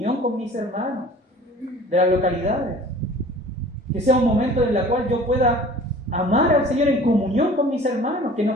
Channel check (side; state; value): both; normal; correlation 0.46